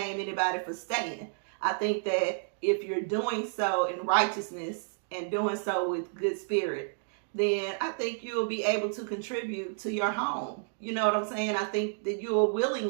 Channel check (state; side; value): silent; left; digital silence